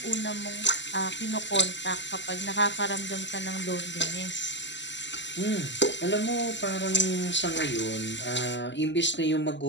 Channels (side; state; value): right; late; 0.53 ms